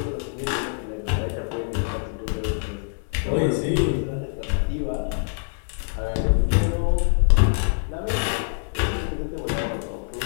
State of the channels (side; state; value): right; silent; 60 dB below the other